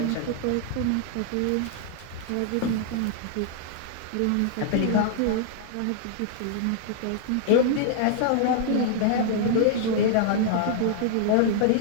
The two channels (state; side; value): different; both; correlation -0.01